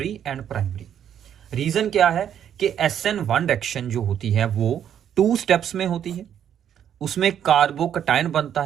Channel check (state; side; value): quieter; left; 9.4 dB